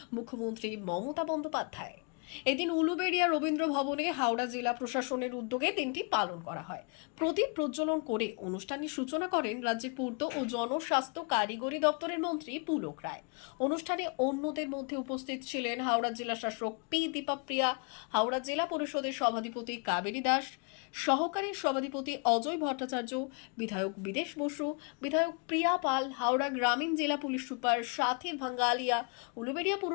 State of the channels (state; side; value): quieter; right; 36.5 dB